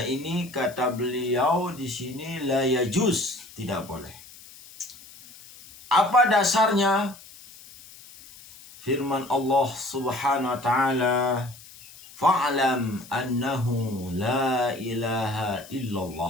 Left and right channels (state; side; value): noise; left; hiss, 20 dB below the sound